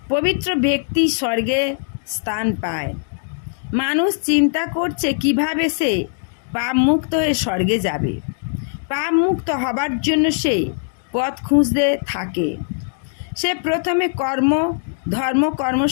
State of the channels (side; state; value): right; silent; digital silence